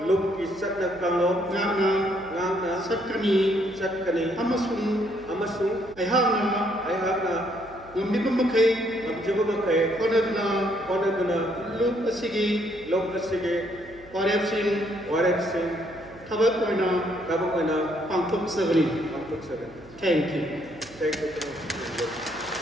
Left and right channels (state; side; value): noise; right; hum, 23 dB below the sound